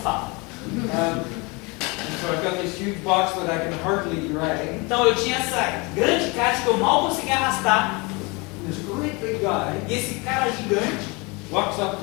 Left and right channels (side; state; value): right; quieter; 27.7 dB